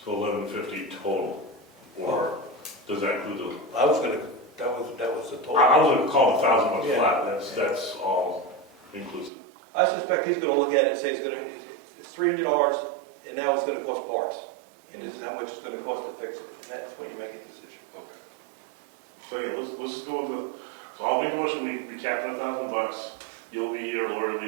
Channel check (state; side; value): drops out; left; at 9.3 s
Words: So $1,150 total, or does that include the? I was gonna, that was the total. I was gonna call it $1,000 Yeah. flat, that's all inclusive. I suspect he's gonna look at it and say it's $300 and now it's gonna cost parts. And this is how much it's gonna cost to fix it, and that's when you make a decision. Okay. So yeah, let's just go with so I'll make a motion, we cap it at $1,000. You'll be here, Lori will be